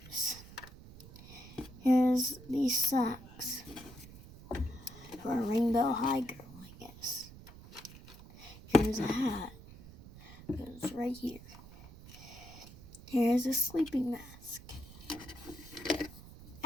Here's these socks. For a rainbow high girl, I guess. Here's a hat. Goes right here. Here's a sleeping mask.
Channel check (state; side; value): noise; right; rumble, 18 dB below the sound